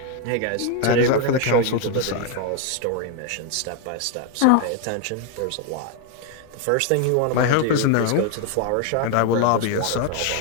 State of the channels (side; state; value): both; different; correlation 0.01